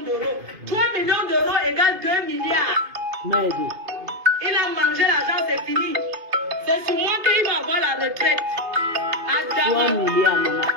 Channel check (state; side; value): late; left; 2.5 ms